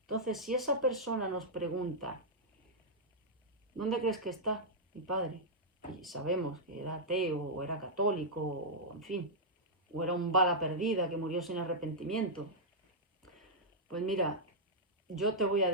Entonces, si esa persona nos pregunta, ¿dónde crees que está mi padre? Y sabemos que era ateo, o era católico, o en fin, o era un bala perdida que murió sin arrepentimiento. Pues mira, yo te voy a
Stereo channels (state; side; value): normal; both; correlation -0.08